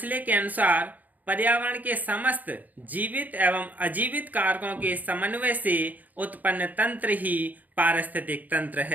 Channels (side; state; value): left; late; 0.081 ms